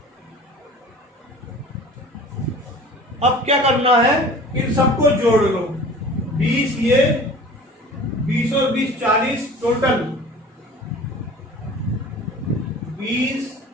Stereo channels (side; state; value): both; normal; correlation 0.43